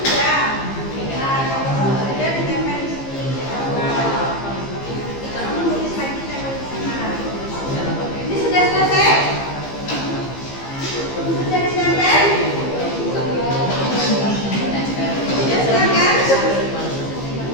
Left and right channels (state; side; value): late; right; 15 ms